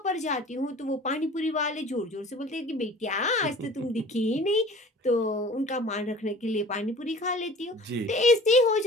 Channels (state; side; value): normal; both; correlation 0.45